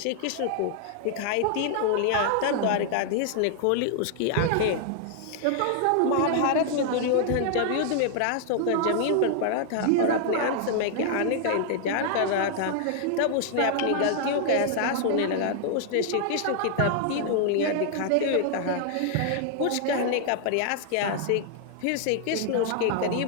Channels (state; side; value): different; both; correlation 0.00